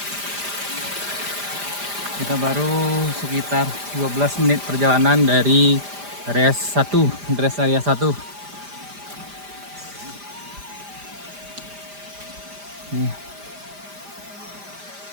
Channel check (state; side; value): late; left; 5.0 ms